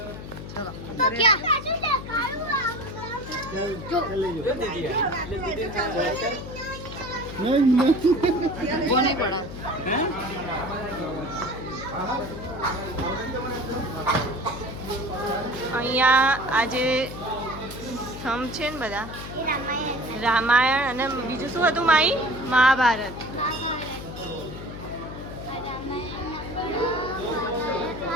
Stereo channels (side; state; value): left; noise; hum, 10 dB below the sound